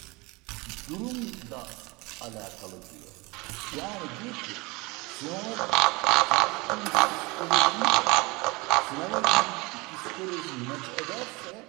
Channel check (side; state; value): left; quieter; 25.0 dB